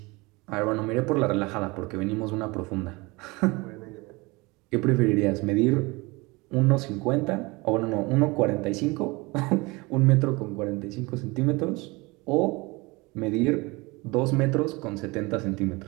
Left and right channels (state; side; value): quieter; left; 24.6 dB